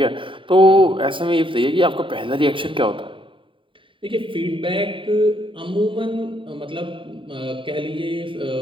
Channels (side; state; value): left; late; 0.25 ms